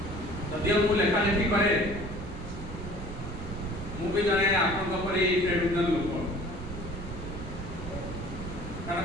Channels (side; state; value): right; noise; rumble, 9 dB below the sound